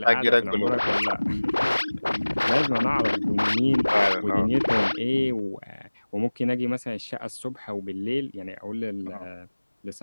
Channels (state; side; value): inverted; both; correlation -1.00